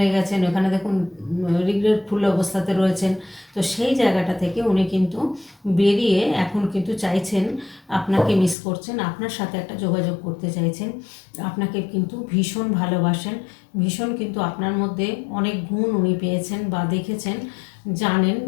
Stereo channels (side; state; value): right; drops out; at 8.6 s